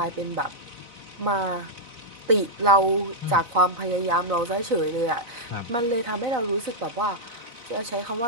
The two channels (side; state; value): left; late; 4.0 ms